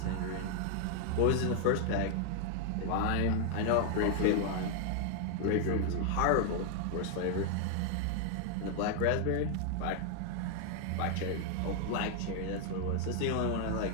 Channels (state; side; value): different; both; correlation 0.00